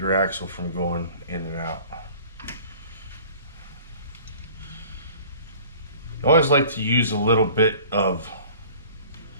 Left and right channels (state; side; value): inverted; both; correlation -0.47